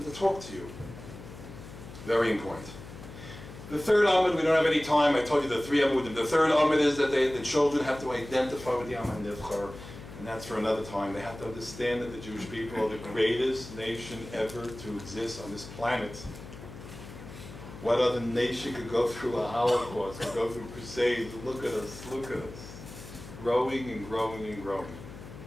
to talk to you. Very important. The third amud, we don't have any time. I told you the 3 amudim. The third amud is that the children have to identify with the Am HaNivchar, and that's for another time. They have to understand that the Jewish people are the greatest nation ever to exist on this planet. What other nation could go through a Holocaust, could go through crusades? Look at us, look at us. Growing and growing and growing.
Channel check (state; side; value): noise; left; hum, 14 dB below the sound